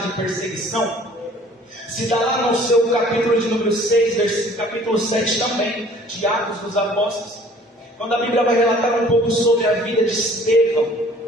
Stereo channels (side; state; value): both; normal; correlation 0.53